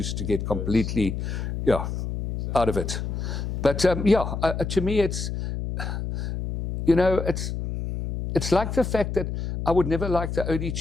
to get completely out of it. But to me, it's like the fact that I would never like the OD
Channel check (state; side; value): noise; left; hum, 4 dB below the sound